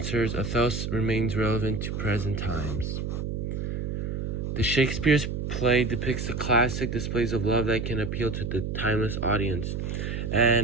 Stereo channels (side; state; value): right; noise; hum, 3 dB below the sound